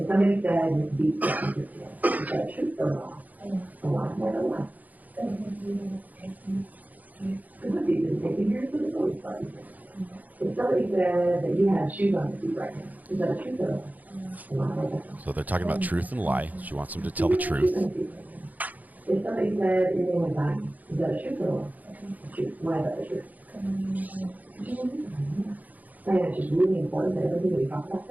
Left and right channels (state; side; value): late; left; 0.079 ms